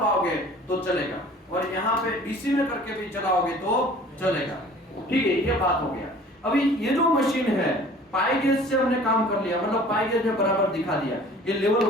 तो चलेगा, और यहाँ पे डीसी में करके भी चलाओगे तो चलेगा, ठीक है। ये बात हो गया। अभी ये जो मशीन है पाई गेज से हमने काम कर लिया, मतलब पाई गेज में बराबर दिखा दिया। ये लेवल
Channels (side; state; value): both; normal; correlation 0.48